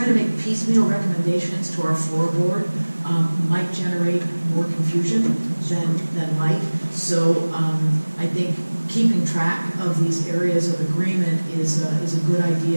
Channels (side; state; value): both; inverted; correlation -1.00